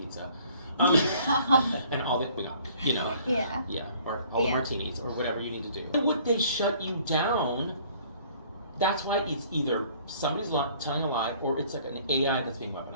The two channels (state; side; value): inverted; both; correlation -0.56